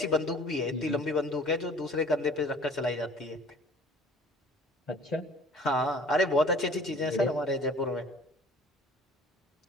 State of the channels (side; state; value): both; normal; correlation 0.50